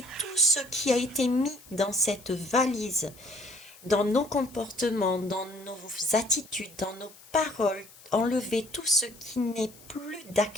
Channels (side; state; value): left; noise; hiss, 22 dB below the sound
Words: tout ce qui a été mis dans cette valise, dans nos comportements, dans nos attitudes, dans nos paroles, enlever tout ce qui n'est plus